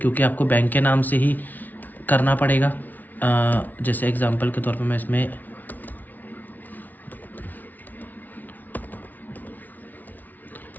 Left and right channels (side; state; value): right; late; 0.081 ms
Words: आपको बैंक के नाम से ही करना पड़ेगा। जैसे एग्जांपल के तौर पे मैं इसमें